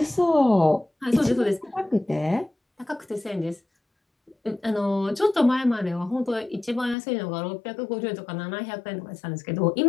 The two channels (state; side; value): drops out; right; at 7.0 s